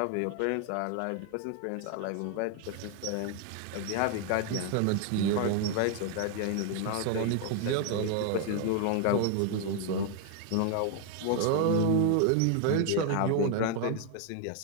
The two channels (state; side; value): different; both; correlation 0.00